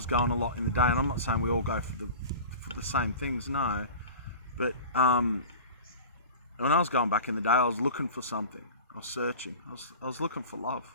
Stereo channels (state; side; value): inverted; both; correlation -0.36